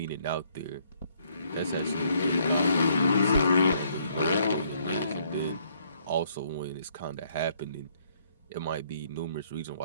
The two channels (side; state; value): both; inverted; correlation -0.68